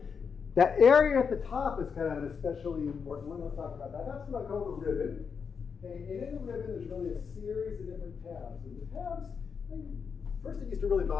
that area at the top is kind of an especially important one. Let's talk about that. That's what I call the ribbon. Okay, and in the ribbon, there's really a series of different tabs. And the tabs, first it used to really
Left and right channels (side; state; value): right; quieter; 6.1 dB